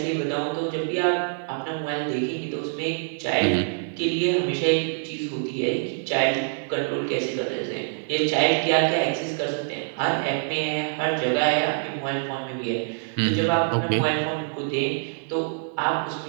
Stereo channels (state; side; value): silent; left; digital silence